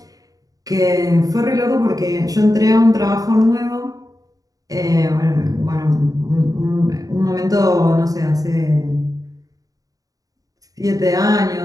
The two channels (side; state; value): left; late; 0.17 ms